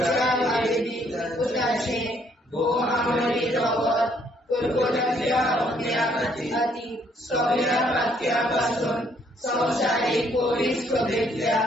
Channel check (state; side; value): normal; both; correlation 0.67